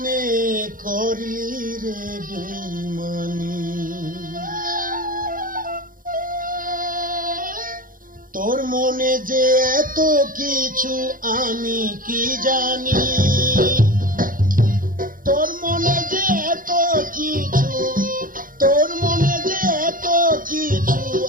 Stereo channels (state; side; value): late; left; 0.40 ms